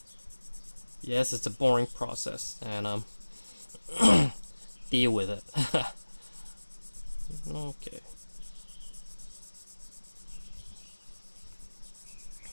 Yes, it's a boring process, and deal with it. Okay.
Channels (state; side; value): inverted; both; correlation -1.00